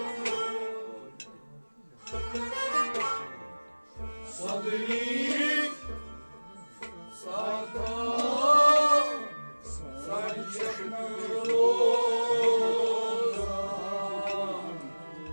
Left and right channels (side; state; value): both; inverted; correlation -1.00